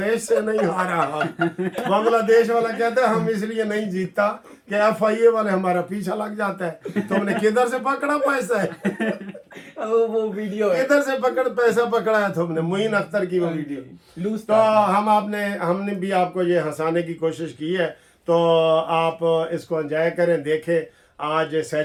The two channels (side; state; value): both; identical; correlation 1.00